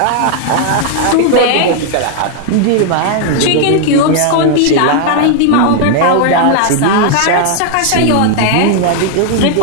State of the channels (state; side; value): different; both; correlation 0.00